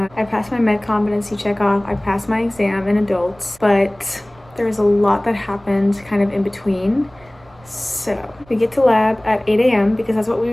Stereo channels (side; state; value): right; noise; rumble, 27 dB below the sound